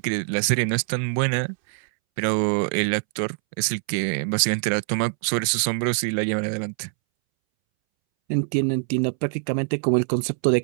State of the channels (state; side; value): silent; left; 63 dB below the other